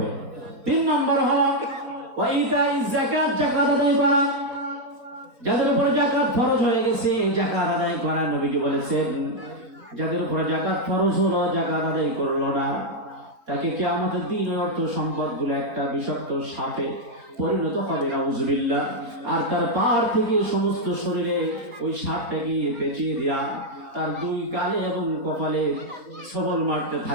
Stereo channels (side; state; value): left; late; 4.3 ms